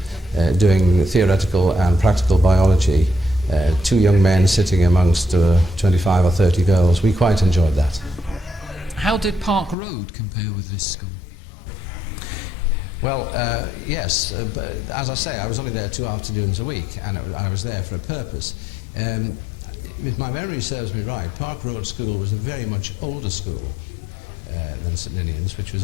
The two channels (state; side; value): drops out; right; at 9.8 s